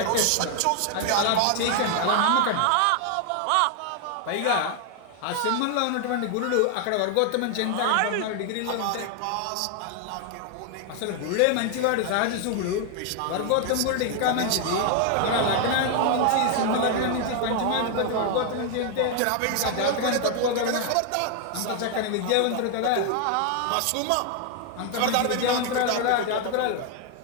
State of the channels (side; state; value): both; different; correlation 0.00